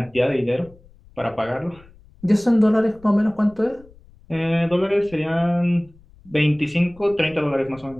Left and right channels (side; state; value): left; noise; rumble, 26 dB below the sound